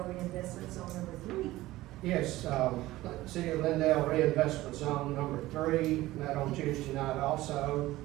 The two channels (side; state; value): left; quieter; 17.2 dB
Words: Reinvestment Zone number 3? Yes, City of Glendale Reinvestment Zone number 3, met on Tuesday night also.